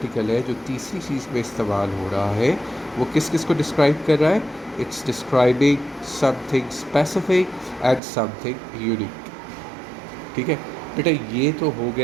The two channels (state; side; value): drops out; left; at 8.0 s